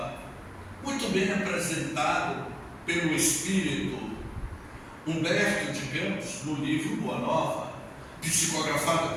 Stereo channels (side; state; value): both; identical; correlation 1.00